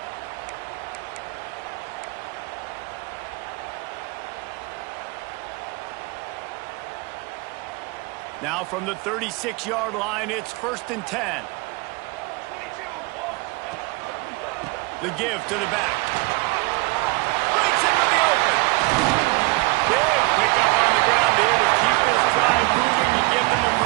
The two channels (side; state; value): left; quieter; 25.3 dB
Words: Now from the 36-yard line, it's 1st and 10. The give to the back.